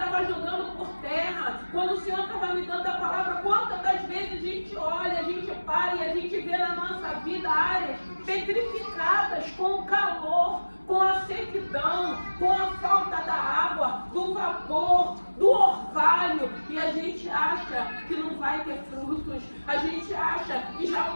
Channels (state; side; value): inverted; both; correlation -1.00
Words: jogando por terra. Quando o Senhor estava me dando a palavra, quantas das vezes a gente olha, a gente para e a gente vê na nossa vida áreas petrificadas com o calor, com a sequidão, com a falta da água, do vapor, do orvalho, e a gente acha que não vai ter frutos, a gente acha que já